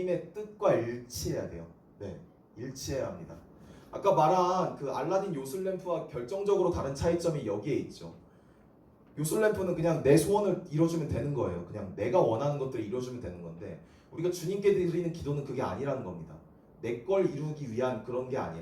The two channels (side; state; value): both; identical; correlation 1.00